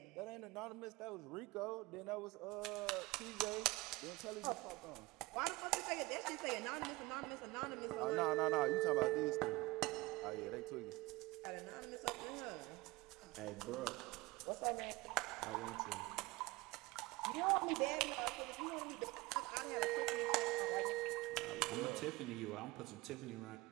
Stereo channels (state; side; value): quieter; left; 21.3 dB